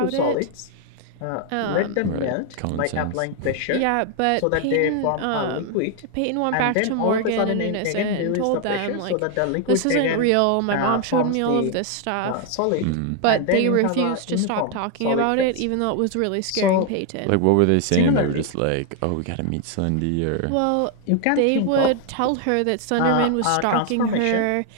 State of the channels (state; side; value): different; both; correlation 0.00